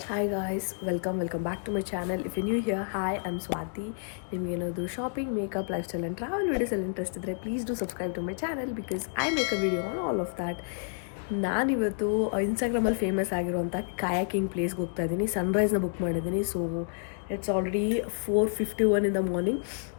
Hi guys, welcome back to my channel. If you're new here, hi, I'm Swati. ನಿಮಗೆ ಏನಾದರೂ shopping, makeup, lifestyle and travel videos ಅಲ್ಲಿ interest ಇದ್ದರೆ please do subscribe to my channel because I make a video on all of that. ನಾನಿವತ್ತು ಇನ್ಸ್ಟಾಗ್ರಾಮಲ್ಲಿ famous ಆಗಿರುವಂಥ kayaking ಪ್ಲೇಸ್ಗೆ ಹೋಗ್ತಾ ಇದ್ದೀನಿ. ಸನ್ರೈಸ್ನ ಬುಕ್ ಮಾಡಿದ್ದೀನಿ. So it's already 4:51 in the morning.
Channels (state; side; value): silent; right; digital silence